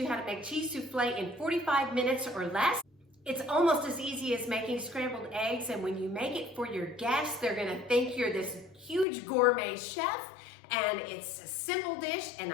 how to make cheese soufflé in 45 minutes or less. It's almost as easy as making scrambled eggs, and when you make it for your guests, they're gonna think you're this huge gourmet chef, and it's a simple dish, and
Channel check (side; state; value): right; drops out; at 9.1 s